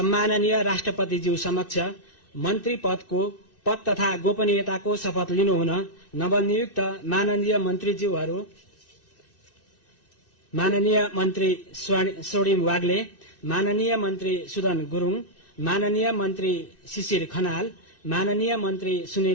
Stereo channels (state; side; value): late; right; 2.6 ms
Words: राष्ट्रपतिज्यू समक्ष मन्त्री पद तथा गोपनीयताको शपथ लिनुहुन नवनियुक्त माननीय मन्त्रीज्यूहरू माननीय मन्त्री स्वर्णिम वाग्ले, माननीय मन्त्री सुदन गुरुङ, माननीय मन्त्री शिशिर खनाल, माननीय मन्त्री